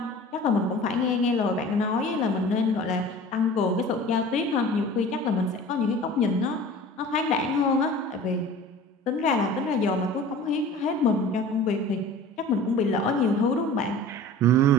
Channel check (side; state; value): both; normal; correlation 0.41